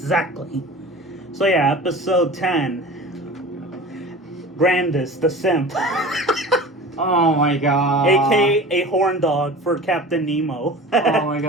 So yeah, episode 10. Grandis, the simp. Oh my god. AKA a horn dog for Captain Nemo. Oh my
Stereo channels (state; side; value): normal; both; correlation 0.37